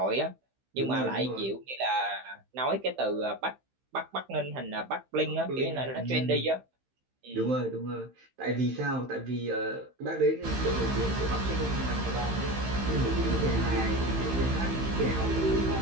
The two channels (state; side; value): late; left; 15 ms